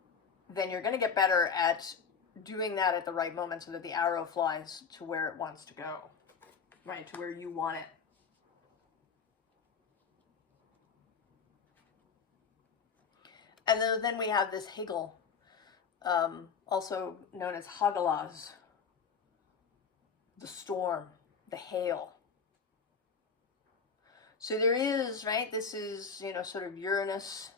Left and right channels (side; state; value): right; quieter; 5.9 dB